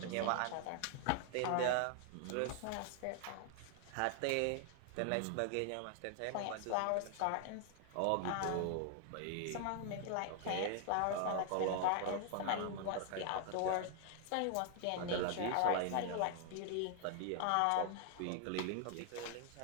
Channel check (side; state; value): both; different; correlation 0.00